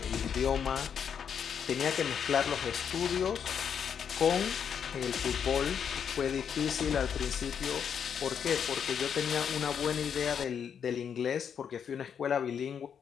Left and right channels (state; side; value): quieter; right; 7.7 dB